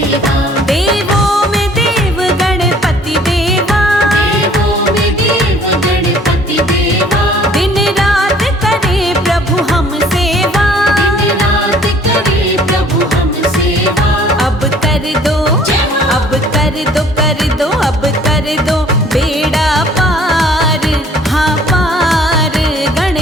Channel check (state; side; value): normal; both; correlation 0.55